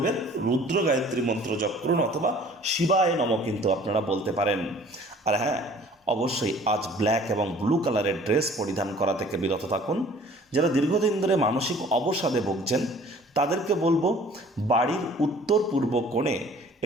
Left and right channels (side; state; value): both; normal; correlation 0.51